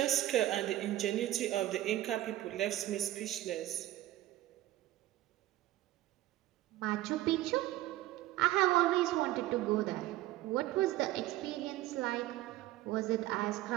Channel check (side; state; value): left; quieter; 15.3 dB